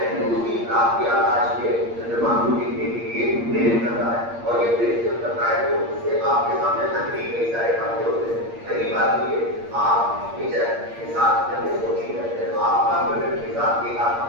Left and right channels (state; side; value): late; left; 8.6 ms